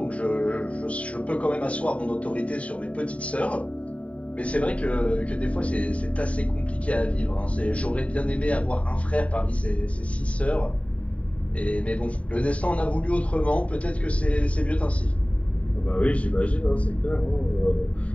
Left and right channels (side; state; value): right; late; 0.066 ms